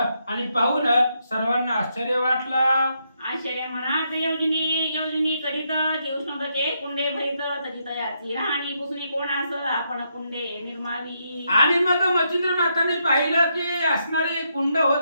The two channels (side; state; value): both; inverted; correlation -0.79